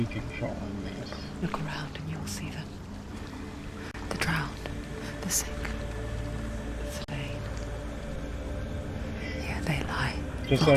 controlling this? Look around and you'll see them. The drowned, the sick, the slain. Here they lie, Just so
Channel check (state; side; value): identical; both; correlation 1.00